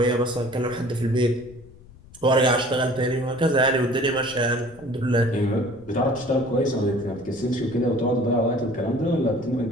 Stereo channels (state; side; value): noise; left; rumble, 22 dB below the sound